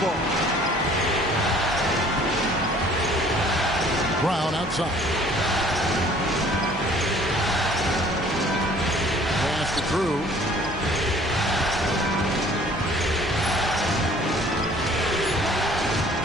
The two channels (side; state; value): both; normal; correlation 0.54